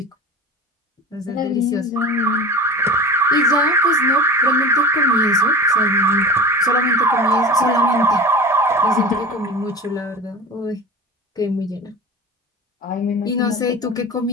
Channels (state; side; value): normal; both; correlation 0.33